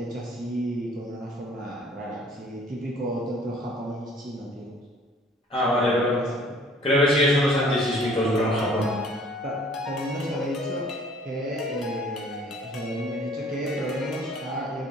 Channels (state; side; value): normal; both; correlation 0.55